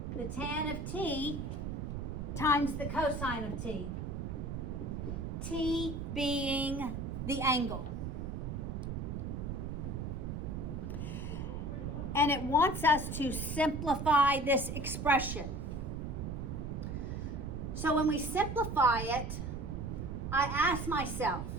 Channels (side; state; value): right; noise; rumble, 4 dB below the sound